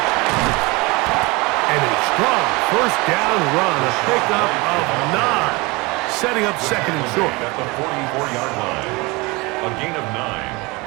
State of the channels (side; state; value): left; quieter; 24.8 dB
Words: And a strong first down run, a pickup of 9, setting up 2nd and short. At the 44-yard line, a gain of